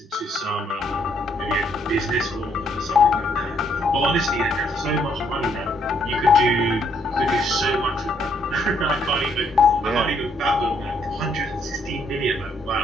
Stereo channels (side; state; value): both; normal; correlation 0.70